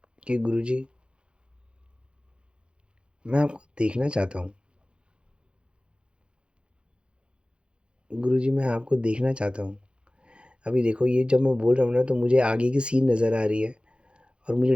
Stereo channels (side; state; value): left; late; 0.055 ms